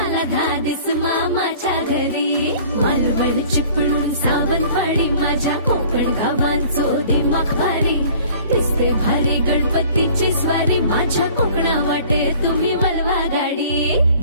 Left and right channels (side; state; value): both; inverted; correlation -0.50